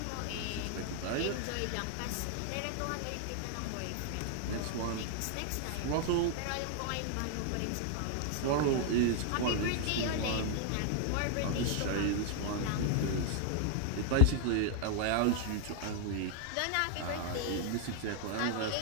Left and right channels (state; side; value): different; both; correlation 0.00